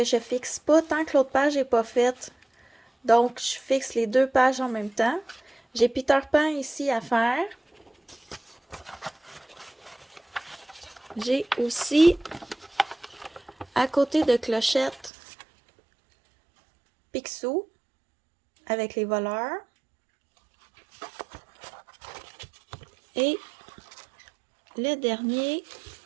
je fixe pas tant que l'autre page n'est pas faite. Donc, je fixe les 2 pages en même temps. J'ai Peter Pan ici à faire. J'ai aussi, à côté de Clochette, Picsou avec les voleurs. Et le dernier,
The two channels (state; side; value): drops out; left; at 15.1 s